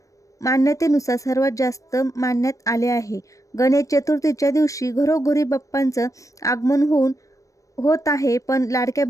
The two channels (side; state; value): right; late; 0.16 ms